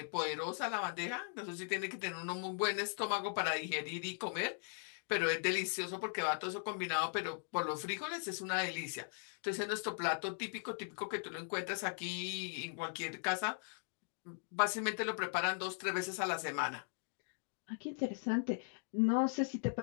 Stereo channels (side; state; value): right; silent; digital silence